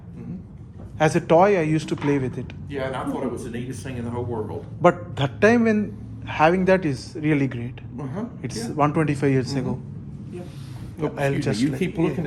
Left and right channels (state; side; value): identical; both; correlation 1.00